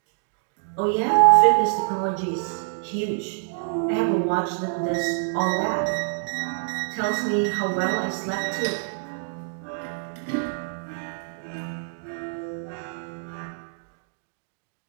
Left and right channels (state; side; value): silent; left; digital silence